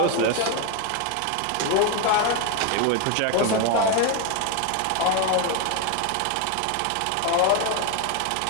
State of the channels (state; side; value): different; both; correlation 0.02